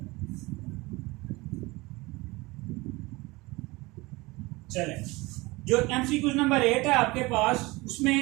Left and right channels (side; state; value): left; quieter; 22.6 dB